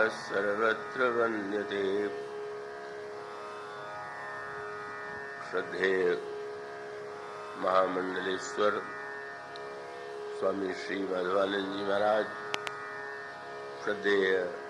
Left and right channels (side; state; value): both; identical; correlation 1.00